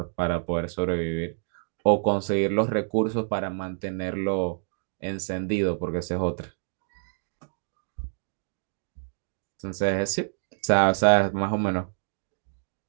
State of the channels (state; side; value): silent; left; digital silence